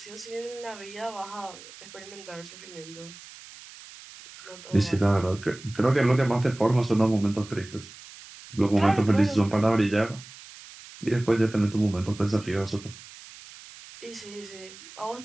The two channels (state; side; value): noise; right; hiss, 18 dB below the sound